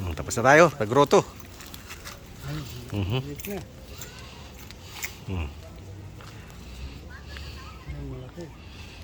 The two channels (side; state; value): both; identical; correlation 1.00